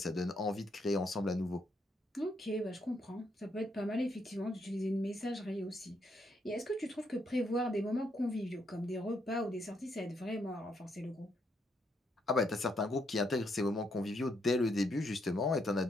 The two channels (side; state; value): both; normal; correlation 0.76